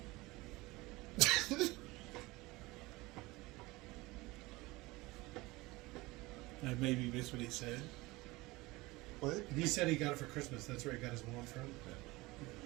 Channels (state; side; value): quieter; left; 21.4 dB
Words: I maybe missed what he said. What? He said he got it for Christmas. That's where he got his wand from.